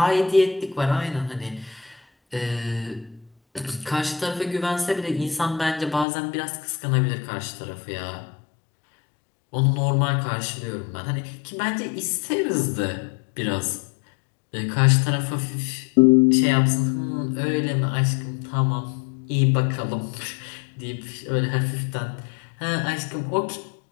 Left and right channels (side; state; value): right; drops out; at 6.1 s